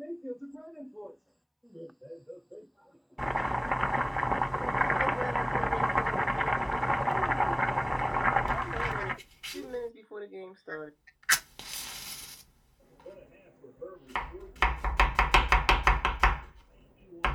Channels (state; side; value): identical; both; correlation 1.00